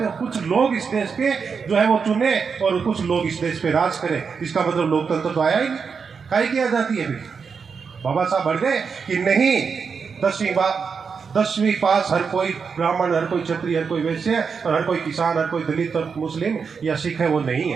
हो। कुछ लोग इस देश पे जो है वो चुने और कुछ लोग इस देश पे राज करें। इसका मतलब लोकतंत्र तो आया ही नहीं। काहे की आजादी है? बाबा साहब अड़ गए कि नहीं, 10वीं पास हर कोई ब्राह्मण, हर कोई क्षत्रिय, हर कोई वैश्य, और हर कोई किसान, हर कोई दलित और मुस्लिम या सिख है, वो नहीं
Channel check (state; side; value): quieter; left; 5.8 dB